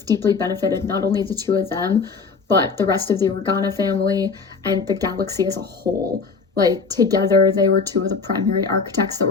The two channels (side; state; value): right; quieter; 4.9 dB